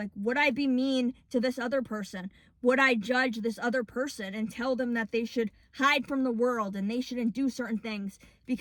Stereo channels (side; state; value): both; identical; correlation 1.00